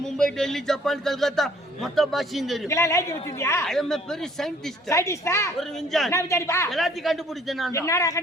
மும்பை, டெல்லி, ஜப்பான், கல்கத்தா மொத்த பாஷையும் தெரியும். பெரிய சயின்டிஸ்ட். ஒரு விஞ்ஞானி. என்ன விஞ்ஞானிப்பா? எல்லாத்தையும் கண்டுபிடிச்சேன் நான். என்னடா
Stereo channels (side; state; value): both; normal; correlation 0.58